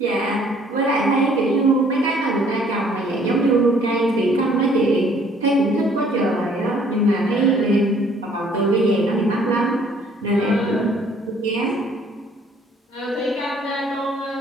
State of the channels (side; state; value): both; normal; correlation 0.60